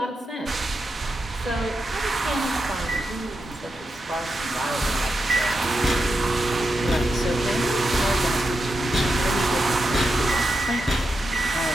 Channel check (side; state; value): both; normal; correlation 0.87